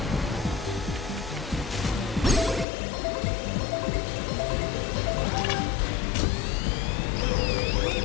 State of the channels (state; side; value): drops out; right; at 2.7 s